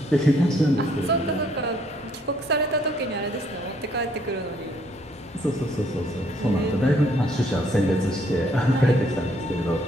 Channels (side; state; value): both; normal; correlation 0.66